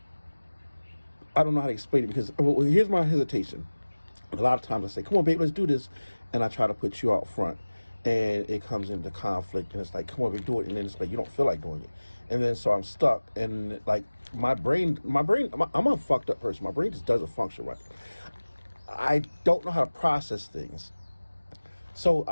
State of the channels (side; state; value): both; inverted; correlation -1.00